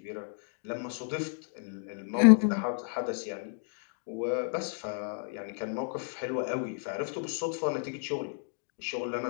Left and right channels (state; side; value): silent; right; digital silence